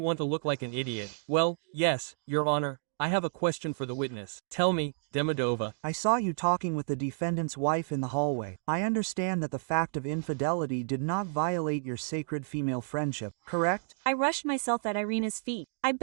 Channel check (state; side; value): silent; left; digital silence